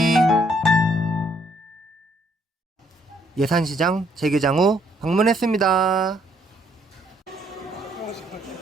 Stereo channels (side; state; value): both; normal; correlation 0.69